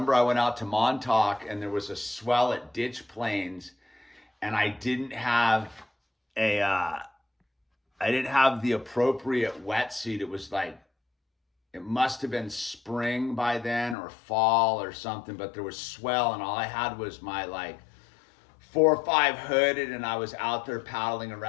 I went out to Montauk, and there was a swell at Ditch Plains, and I didn't have the appropriate wetsuit. It was like, it must have been spring by then or fall or something, but there was swell, and all I had was my like 4 or 5 hooded, and I was out there paddling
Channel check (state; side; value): drops out; right; at 14.0 s